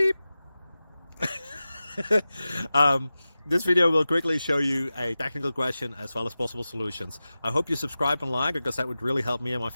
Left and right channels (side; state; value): both; inverted; correlation -0.95